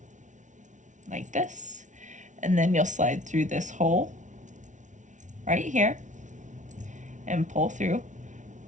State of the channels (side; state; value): left; late; 0.36 ms